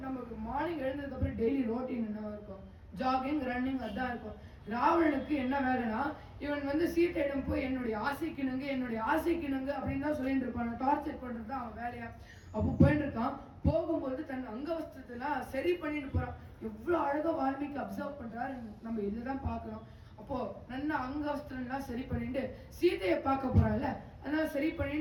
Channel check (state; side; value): identical; both; correlation 1.00